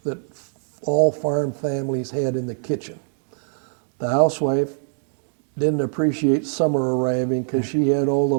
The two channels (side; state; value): left; silent; digital silence